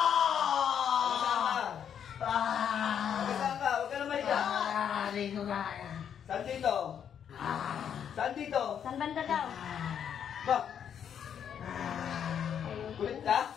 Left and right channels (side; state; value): right; quieter; 8.5 dB